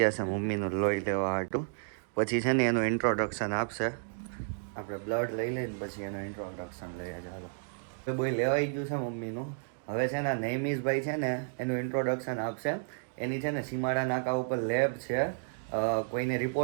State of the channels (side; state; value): left; silent; digital silence